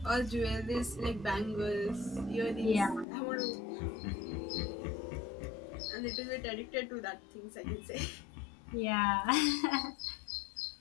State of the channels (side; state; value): right; drops out; at 3.1 s